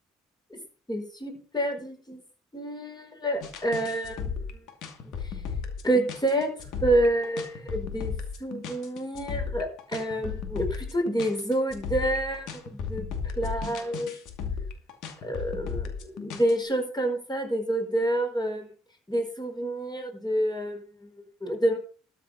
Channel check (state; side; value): normal; both; correlation 0.66